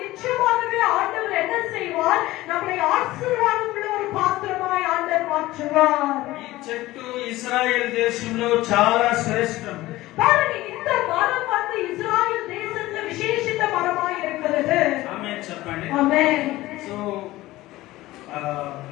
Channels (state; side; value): quieter; right; 17.5 dB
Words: ஆண்டவர் என்ன செய்வார்? நம்மை ஆசீர்வாதம் உள்ள ஒரு பாத்திரமாய் ஆண்டவர் மாற்றுவார். ఈ చెట్టు ఇశ్రాయేల్ దేశంలో చాలా శ్రేష్టం. பாருங்க, இந்த மரம் வந்து இஸ்ராயேல் தேசத்துல விசேஷித்த மரமாய் இருக்கிறது. ఆమేన్ చెప్పండి. ஆமென். సో